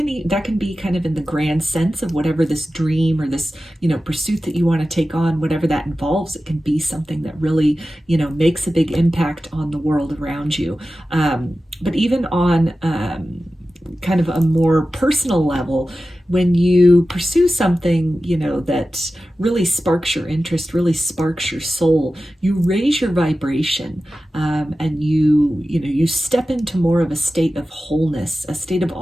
be kind of in the grand sense of whatever this dream or this, you know, pursuit that you want to take on, whatever that involves. It can be something that really, you know, makes a big impact on the world around you. But even on kind of a more personal level, when you pursue something, you know, that really sparks your interest, really sparks your soul, you raise your vibration, and you step into more of a state of wholeness, a state of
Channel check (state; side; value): normal; both; correlation 0.94